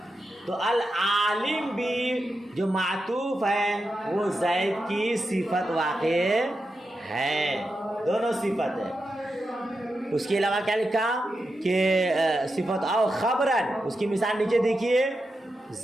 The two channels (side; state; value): both; normal; correlation 0.88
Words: تو العالم بھی جو معطوف ہے وہ زید کی صفت واقع ہے، دونوں صفت ہے. اس کے علاوہ کیا لکھا کہ صفت او خبرن، اس کی مثال نیچے دیکھیے